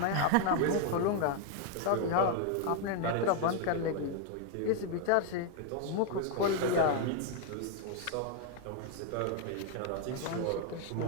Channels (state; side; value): different; both; correlation 0.01